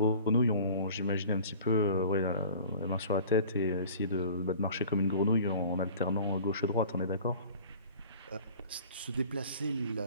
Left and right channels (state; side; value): inverted; both; correlation -0.45